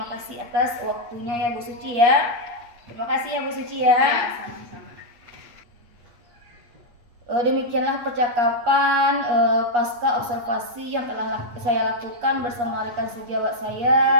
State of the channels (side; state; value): left; late; 8.4 ms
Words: kasih atas waktunya ya Bu Suci ya. Terima kasih ya Bu Suci ya. Sama-sama. Demikianlah percakapan pasca observasi yang telah saya lakukan bersama rekan sejawat